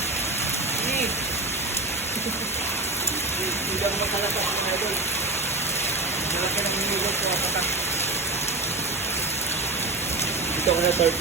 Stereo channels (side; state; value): left; quieter; 3.1 dB